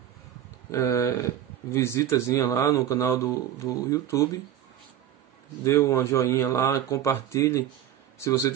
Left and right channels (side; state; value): left; quieter; 10.9 dB